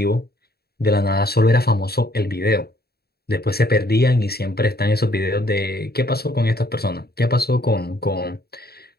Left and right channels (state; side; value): late; right; 0.46 ms